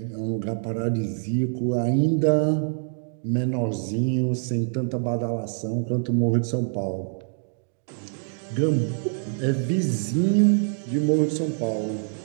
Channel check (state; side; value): silent; left; digital silence